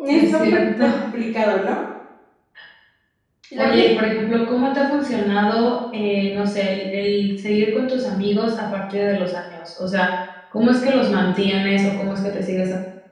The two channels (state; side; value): identical; both; correlation 1.00